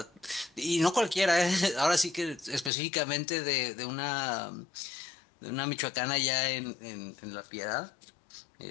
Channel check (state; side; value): drops out; right; at 2.7 s